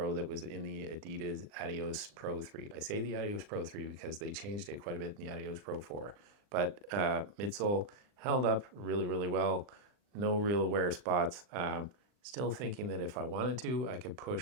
that was in the Adidas Adios Pro 3. I say the Adios Pro 3 because they changed it quite a bit in the Adios Pro 4. But midsole held up really, really well. No real wear spots. still thinking that if I wanted to, I could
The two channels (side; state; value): left; late; 39 ms